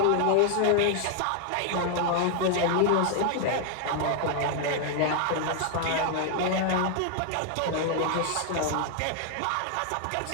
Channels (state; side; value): different; both; correlation 0.00